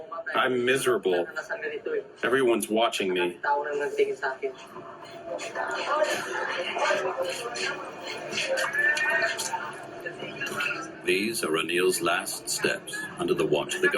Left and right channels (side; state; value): both; identical; correlation 1.00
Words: I'm miserable. Everyone's watching me. These are Ronil's last steps under the watch of the